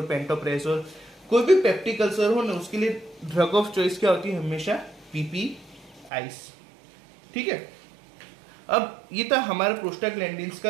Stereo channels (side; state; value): left; drops out; at 6.1 s